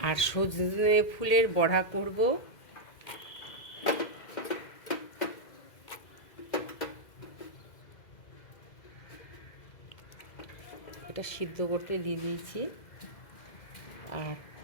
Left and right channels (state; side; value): late; right; 2.0 ms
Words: আর সজনে ফুলের বড়া করব। এটা সিদ্ধ করতে দিয়ে দিয়েছি। আর